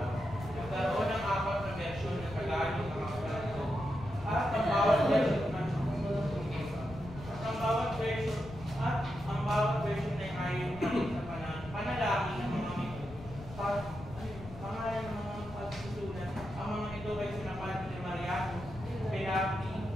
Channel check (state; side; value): noise; left; rumble, 14 dB below the sound